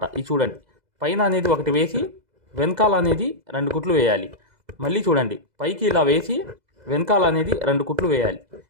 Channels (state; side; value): late; left; 2.0 ms